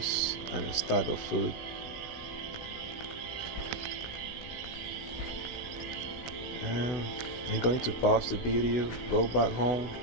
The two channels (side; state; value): right; late; 16 ms